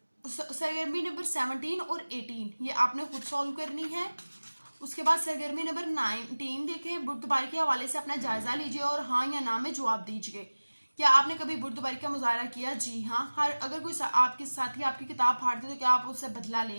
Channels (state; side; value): inverted; both; correlation -1.00